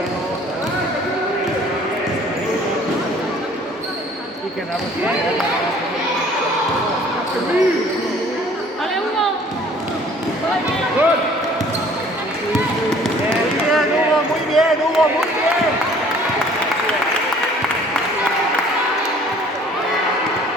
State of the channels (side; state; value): both; normal; correlation 0.54